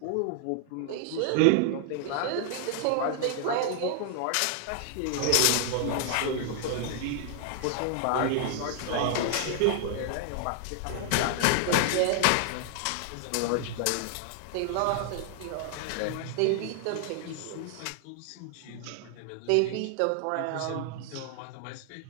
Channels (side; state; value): both; different; correlation 0.00